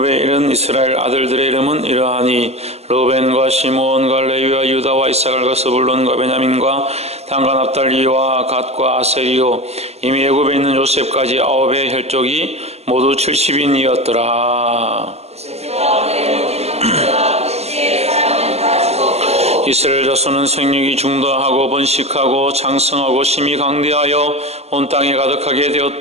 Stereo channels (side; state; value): left; late; 0.30 ms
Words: 이른 이스라엘 아들들의 이름은 이러하니 르벤과 시므온과 레위와 유다와 이사갈과 스불론과 베냐민과 단과 납달리와 갓과 아셀이요 이미 애굽에 있는 요셉까지 9의 혈족이 모두 70인이었더라. 이스라엘 자손은 생육이 중도하고 번식하고 장성하고 심히 강대하여 온 땅에 가득하게